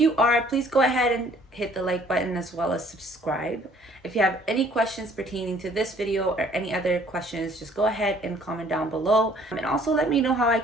are, please go ahead and hit the like button as well as subscribe. If you have any questions pertaining to this video or any other questions, just go ahead and comment down below. And also let me know how I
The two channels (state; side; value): normal; both; correlation 0.58